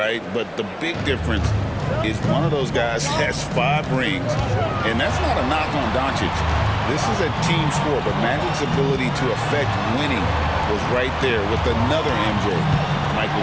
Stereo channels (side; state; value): both; identical; correlation 1.00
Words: But the big difference is one of those guys has 5 rings, and that's not a knock on Doncic. This is a team sport, but Magic's ability to affect winning was right there with another MJ, Michael